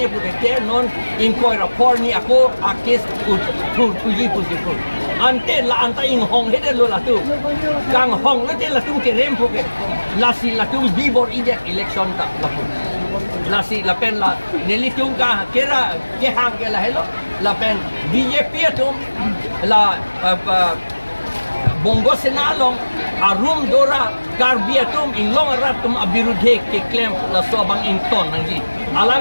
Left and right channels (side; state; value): both; inverted; correlation -1.00